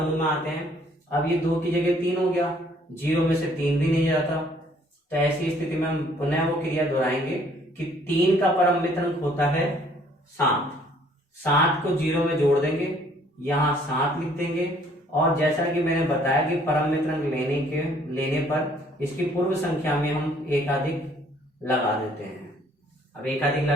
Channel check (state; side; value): normal; both; correlation 0.61